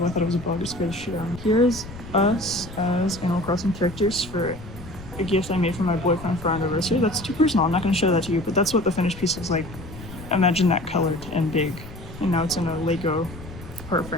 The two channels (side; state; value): left; noise; rumble, 14 dB below the sound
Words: I thought it was a bug. It scared the shit out of me. Here's us as Animal Crossing characters for a gift I made for my boyfriend for our anniversary. That's too personal. I'm not going to show that to you, but that's what the finished piece looks like. Imagine that colored and big. And now it's in a Lego part